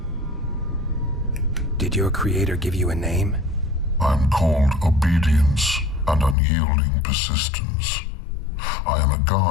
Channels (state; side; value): drops out; right; at 6.4 s